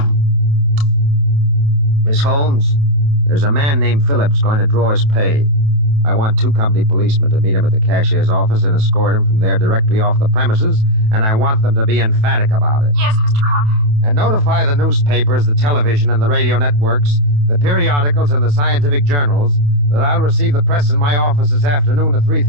Miss Holmes, there's a man named Phillips going to draw his pay. I want 2 company policemen to meet him at the cashier's office and escort him from there directly off the premises, and I want them to be emphatic about it. Yes, Mr. Crowder. And notify the newspapers, the television, and the radio networks, the periodicals, and the scientific journals that I'll receive the press in my office this afternoon at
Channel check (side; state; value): left; late; 28 ms